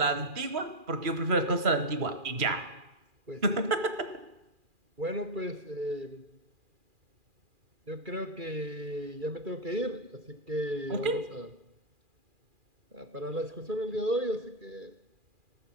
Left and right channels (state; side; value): late; left; 2.4 ms